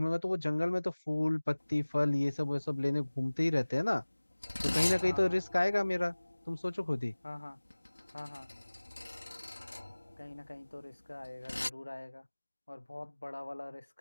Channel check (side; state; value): both; inverted; correlation -1.00